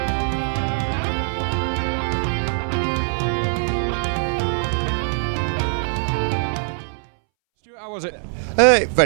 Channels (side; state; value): left; silent; 63 dB below the other